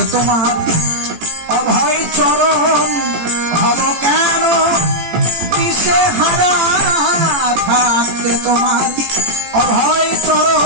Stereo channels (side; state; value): left; late; 18 ms